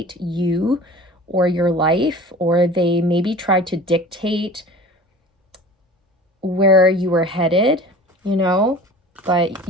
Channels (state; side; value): normal; both; correlation 0.41